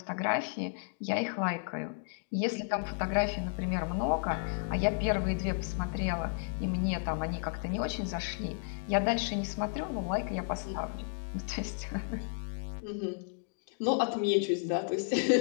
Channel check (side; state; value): right; silent; digital silence